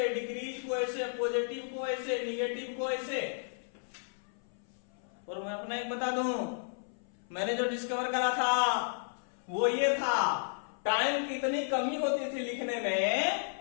डिक्रीज को ऐसे, पॉजिटिव को ऐसे, निगेटिव को ऐसे। और मैं अपना एक बता दूं, मैंने जो डिस्कवर करा था वो ये था, टाइम की इतनी कमी होती थी लिखने में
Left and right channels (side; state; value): right; silent; 56 dB below the other